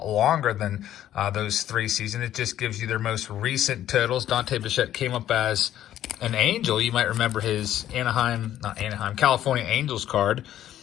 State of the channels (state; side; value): quieter; right; 12.0 dB